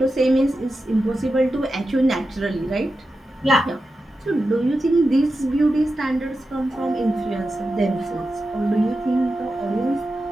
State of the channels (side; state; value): both; normal; correlation 0.91